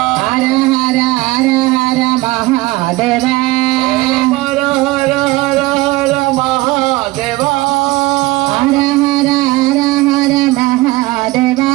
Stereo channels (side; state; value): left; quieter; 20.3 dB